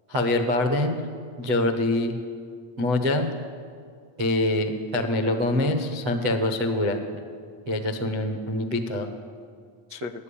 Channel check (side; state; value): left; late; 8.0 ms